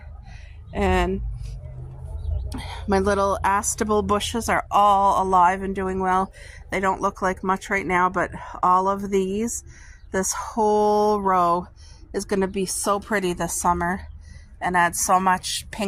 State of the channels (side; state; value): both; identical; correlation 1.00